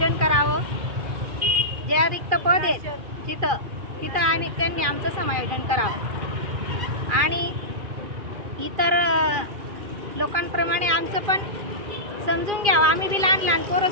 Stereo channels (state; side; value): late; left; 2.4 ms